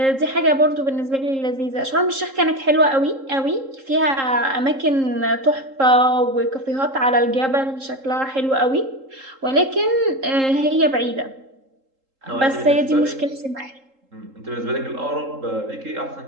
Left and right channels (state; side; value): late; left; 3.8 ms